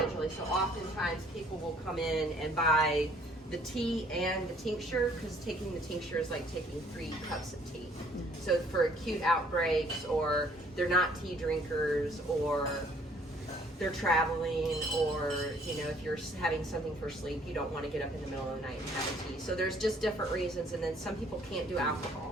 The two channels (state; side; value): normal; both; correlation 0.60